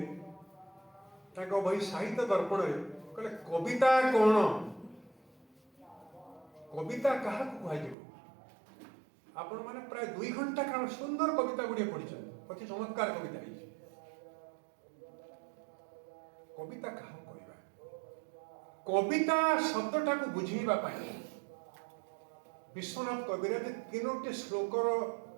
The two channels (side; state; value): left; drops out; at 8.0 s